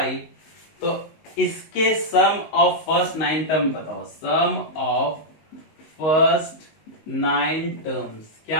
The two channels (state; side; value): late; right; 19 ms